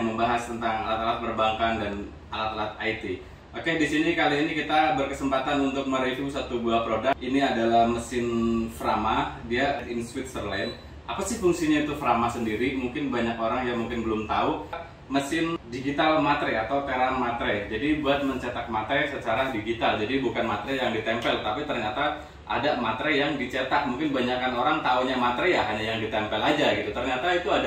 membahas tentang alat-alat perbankan dan alat-alat IT. Oke, di sini kali ini kita berkesempatan untuk mereview satu buah produk. Ini adalah mesin Frama, dia in Switzerland. Apa sih fungsinya itu Frama sendiri? Mungkin banyak orang yang mungkin belum tahu. Mesin digital matre atau teran matre. Jadi buat mencetak matre secara digital. Jadi bukan matre yang ditempel, tapi ternyata ada matre yang dicetak. Mungkin banyakkan orang taunya matre ya hanya yang ditempel aja gitu. Ternyata itu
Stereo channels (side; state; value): both; identical; correlation 1.00